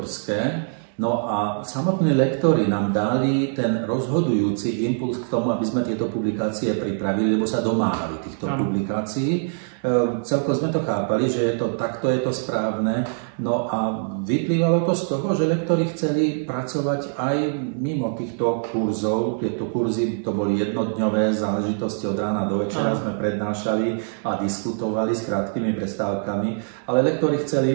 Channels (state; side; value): silent; left; digital silence